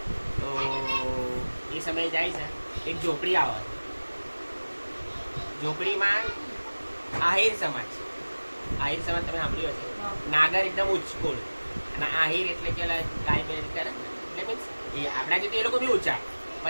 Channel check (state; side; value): inverted; both; correlation -1.00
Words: તો એ સમયે જાય છે. એક ઝોપડી આવે. ઝોપડીમાં આહિર સમાજ. આહિર સમાજ તમે સાંભળ્યું હશે. નાગર એકદમ ઉચ્ચકુળ અને આહિર એટલે કે ગાય બે કરે એટલે મીન્સ એ આપણા જેથી એ લોકો બી ઊંચા